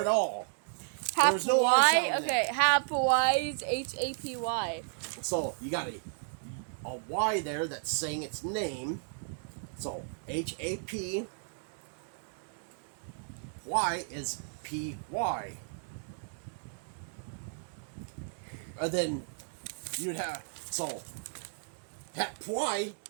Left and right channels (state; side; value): silent; left; digital silence